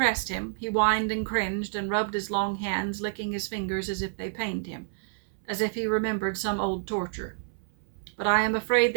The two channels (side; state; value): left; silent; 59 dB below the other